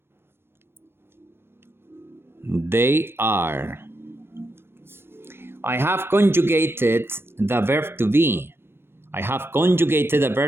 they are. I have conjugated the verb to be. I have conjugated the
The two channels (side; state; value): left; late; 0.11 ms